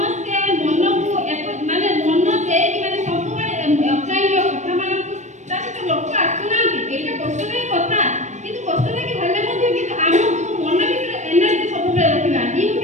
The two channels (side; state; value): left; late; 0.34 ms